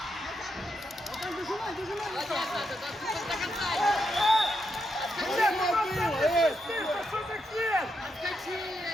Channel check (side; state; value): both; normal; correlation 0.82